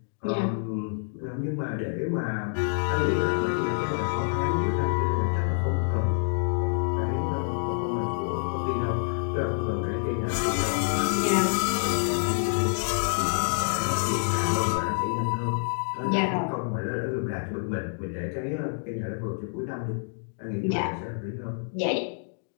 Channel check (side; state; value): right; silent; digital silence